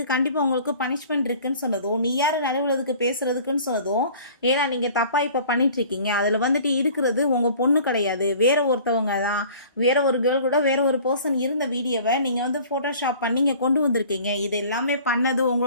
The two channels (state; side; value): inverted; both; correlation -0.48